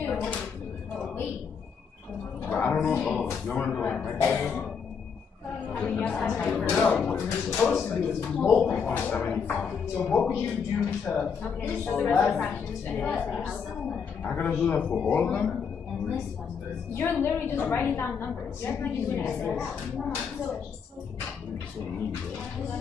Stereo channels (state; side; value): quieter; right; 6.4 dB